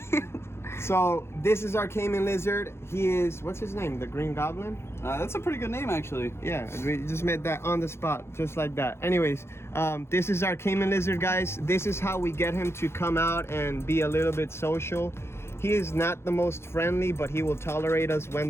So this is our Caiman Lizard. He is, what's his name? The Green Goblin? That's a pretty good name, actually. Yeah, we just made that on the spot, just like that. Anyways, this is our Caiman Lizard, guys. This is how we get him to come out and be a little bit social. He is not the most friendly, but he will tolerate us when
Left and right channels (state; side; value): late; right; 0.12 ms